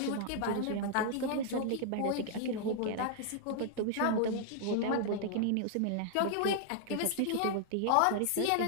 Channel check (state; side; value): different; both; correlation -0.01